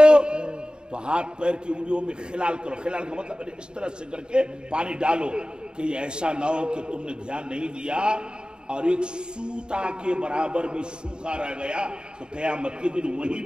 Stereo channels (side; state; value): left; late; 0.049 ms